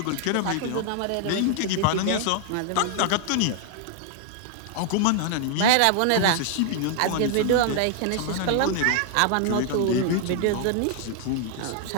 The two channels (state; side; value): different; both; correlation 0.00